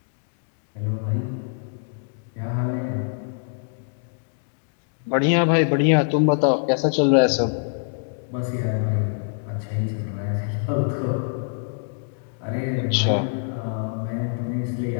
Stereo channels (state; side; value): silent; right; digital silence